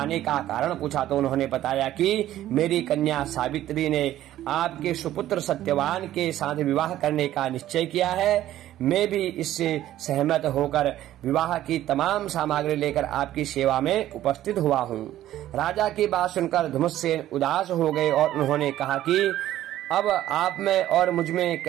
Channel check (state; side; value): quieter; left; 13.3 dB